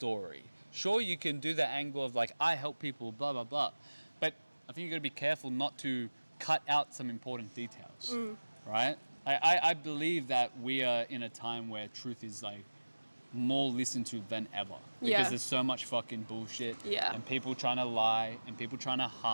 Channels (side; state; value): both; inverted; correlation -1.00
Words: Sure, you can do the angle of like, I help people, blah blah blah, but I think you got to be careful not to cut out some important details, right? I believe that we are in a time where truth is like more listened to than ever because there's so much fucking bullshit and people trying to lie and people trying to